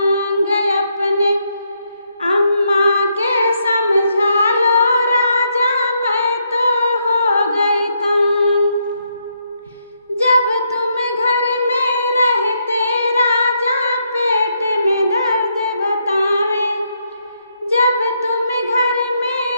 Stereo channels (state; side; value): inverted; both; correlation -0.77